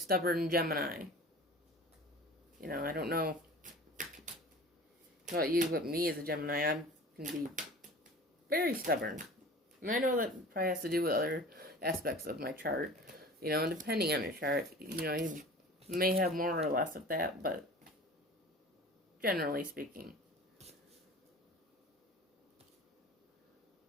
Gemini. You know, I don't know about you, but me as a Gemini, I can be very stubborn. And I know that probably has to do with other aspects of my chart. You know, and depending on your chart, you know, you may have more or less of that, but generally speaking.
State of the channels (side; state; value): both; normal; correlation 0.40